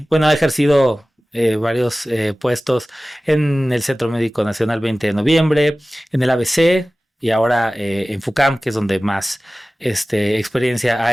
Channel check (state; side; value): normal; both; correlation 0.97